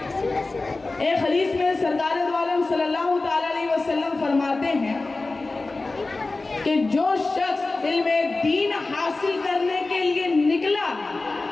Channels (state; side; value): quieter; right; 3.4 dB